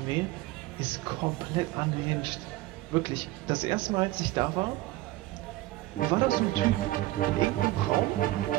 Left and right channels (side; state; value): left; quieter; 17.6 dB